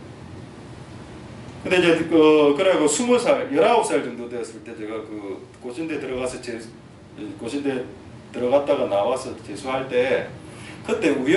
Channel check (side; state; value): both; identical; correlation 1.00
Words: 근데 이제 그래고 20살, 19살 정도 되었을 때 제가 그 고신대 들어가서 고신대 들어갔다가 나와서 재수할 때 그때